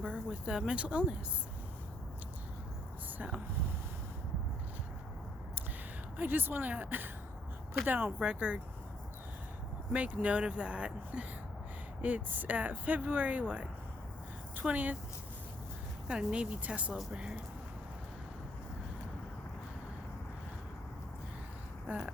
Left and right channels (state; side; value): normal; both; correlation 0.70